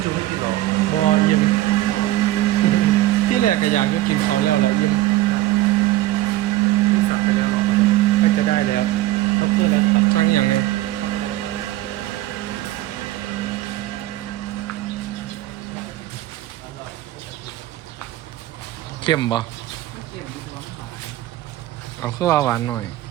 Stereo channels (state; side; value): quieter; left; 15.5 dB